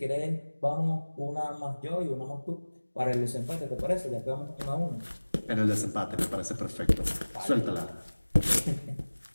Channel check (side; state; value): both; inverted; correlation -1.00